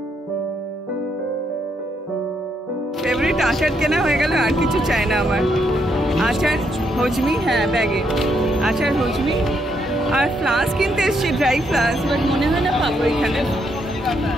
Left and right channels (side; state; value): both; normal; correlation 0.76